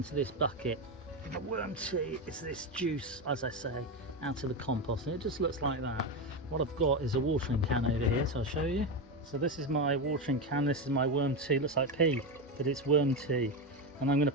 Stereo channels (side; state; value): both; normal; correlation 0.14